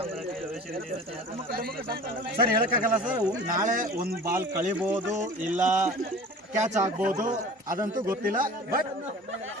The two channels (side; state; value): both; normal; correlation 0.41